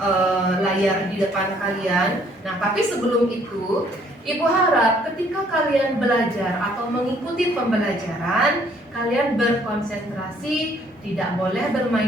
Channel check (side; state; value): both; normal; correlation 0.63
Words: layar di depan kalian. Nah, tapi sebelum itu, Ibu harap ketika kalian belajar atau mengikuti pembelajaran, kalian berkonsentrasi, tidak boleh